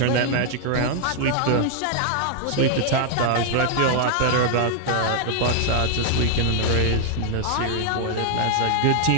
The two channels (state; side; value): different; both; correlation 0.00